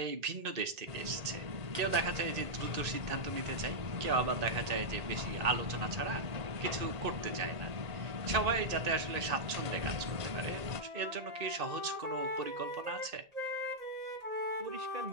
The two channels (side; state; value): left; late; 1.8 ms